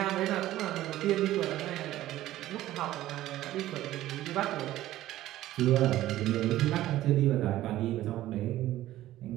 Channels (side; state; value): left; quieter; 14.6 dB